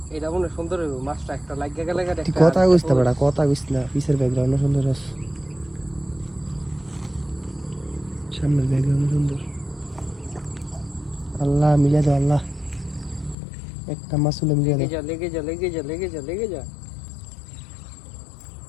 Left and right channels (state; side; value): drops out; right; at 13.4 s